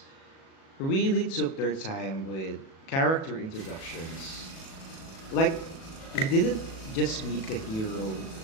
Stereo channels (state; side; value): late; right; 37 ms